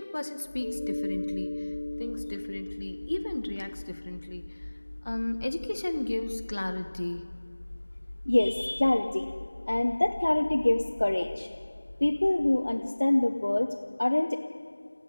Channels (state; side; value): inverted; both; correlation -1.00